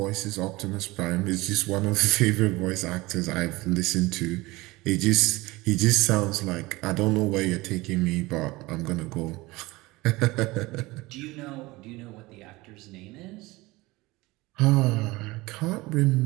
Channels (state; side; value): quieter; left; 21.2 dB